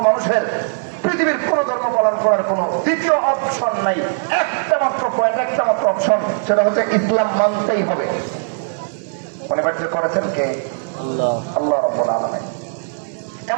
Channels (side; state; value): left; silent; 58 dB below the other